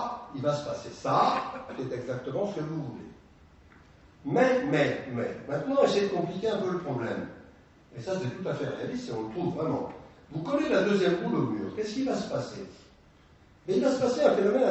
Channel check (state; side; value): identical; both; correlation 1.00